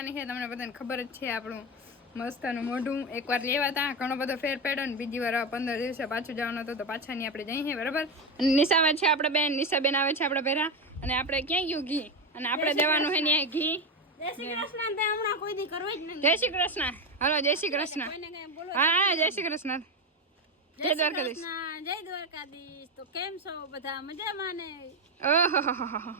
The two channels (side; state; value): both; normal; correlation 0.14